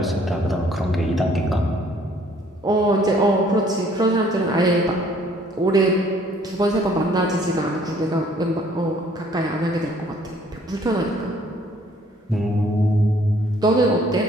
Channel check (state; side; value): normal; both; correlation 0.60